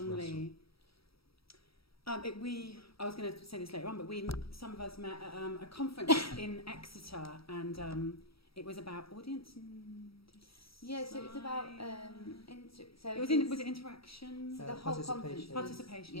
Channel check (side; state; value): right; late; 0.76 ms